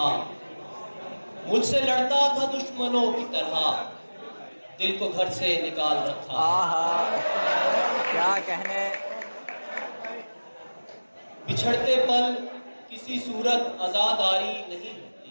मुझसे लड़ता था दुश्मनों की तरह, दिल को घर से निकाल रखा। आहा, क्या कहने। बिछड़ते पल किसी सूरत आजादारी नहीं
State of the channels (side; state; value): both; inverted; correlation -1.00